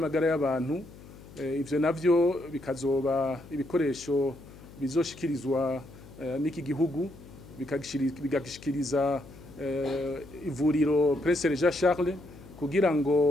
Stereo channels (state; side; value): noise; left; hum, 19 dB below the sound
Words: y'abantu. Ivyo navyo bikazoba ibikoresho bizoshikirizwa n'iki gihugu bigashikiriza ivuriro Prince Jean Charles kugira